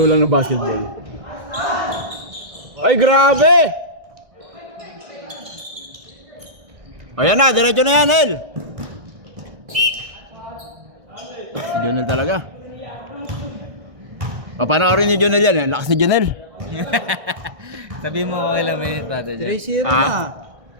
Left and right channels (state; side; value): late; left; 1.6 ms